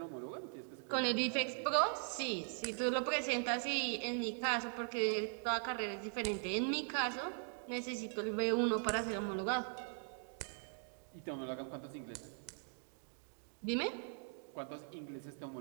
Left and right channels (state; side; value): silent; left; 51 dB below the other